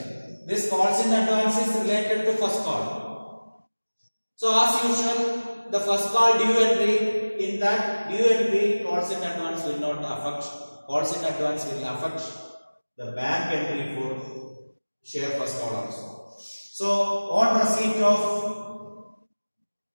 This calls in advance is related to first call. So as usual, the first call due entry, in that due entry calls in advance will not affect. Calls in advance will affect the bank entry for share first call also. So on receipt of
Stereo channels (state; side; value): inverted; both; correlation -1.00